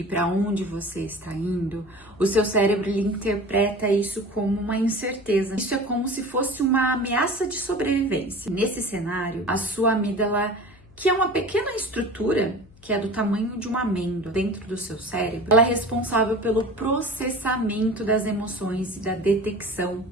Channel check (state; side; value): noise; left; hum, 25 dB below the sound